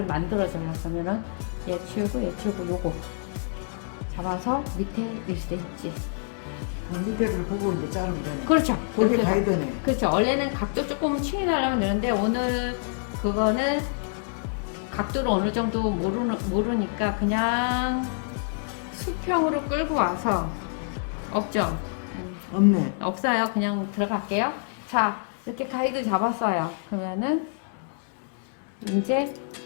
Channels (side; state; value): right; silent; digital silence